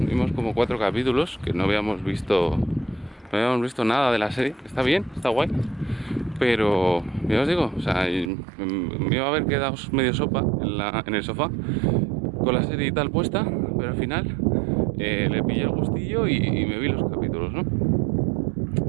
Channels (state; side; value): drops out; left; at 8.3 s